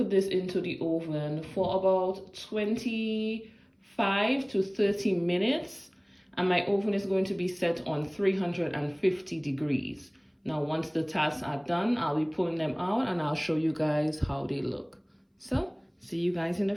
this into the oven for about 25 to 30 minutes. And my oven is going to be set on 350 degrees. Now, once the tarts are done, I'll be pulling them out and I'll show you guys how they look. So, see you guys in a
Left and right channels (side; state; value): both; identical; correlation 1.00